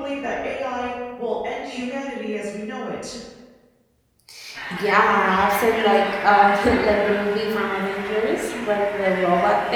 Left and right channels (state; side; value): identical; both; correlation 1.00